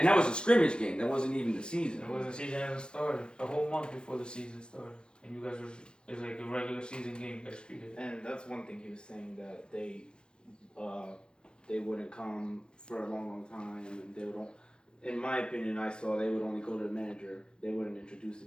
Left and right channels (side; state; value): right; late; 0.050 ms